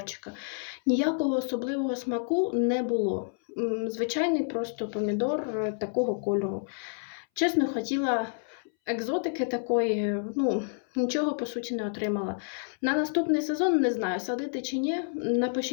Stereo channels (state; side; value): silent; right; 59 dB below the other